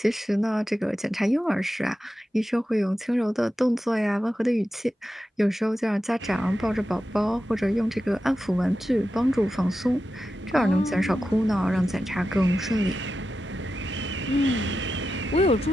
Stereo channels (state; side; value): normal; both; correlation 0.91